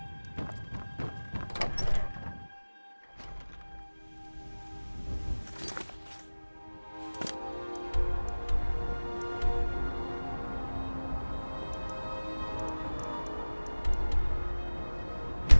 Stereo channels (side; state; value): both; inverted; correlation -1.00